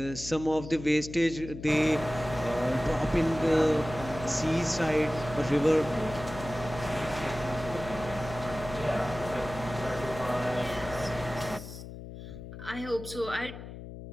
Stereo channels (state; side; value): noise; left; hum, 12 dB below the sound